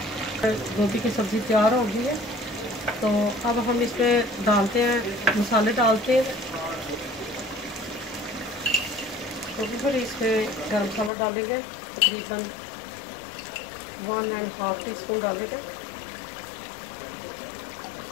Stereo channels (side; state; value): right; drops out; at 11.1 s